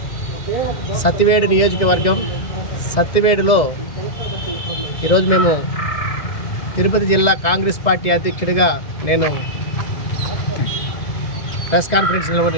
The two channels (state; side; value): late; right; 2.0 ms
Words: సత్యవేడు నియోజకవర్గం సత్యవేడులో ఈరోజు మేము తిరుపతి జిల్లా కాంగ్రెస్ పార్టీ అధ్యక్షుడిగా నేను ప్రెస్ కాన్ఫరెన్స్